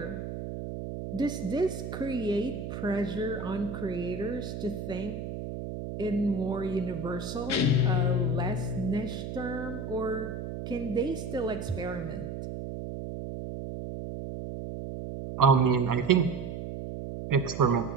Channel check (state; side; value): noise; right; hum, 6 dB below the sound